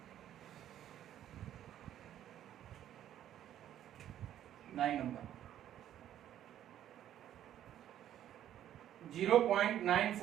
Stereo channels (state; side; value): quieter; left; 11.4 dB